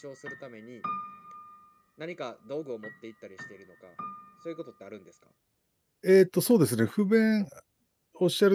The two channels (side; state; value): both; identical; correlation 1.00